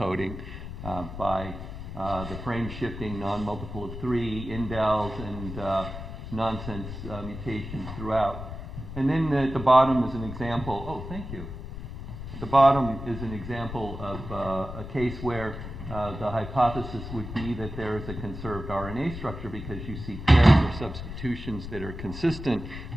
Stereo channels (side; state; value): left; noise; rumble, 9 dB below the sound